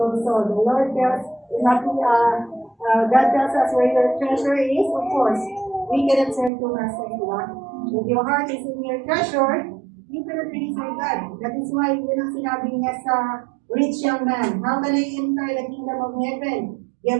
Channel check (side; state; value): left; drops out; at 6.5 s